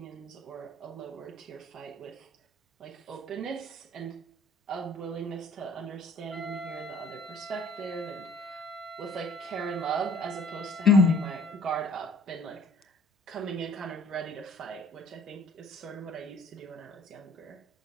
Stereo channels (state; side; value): normal; both; correlation 0.55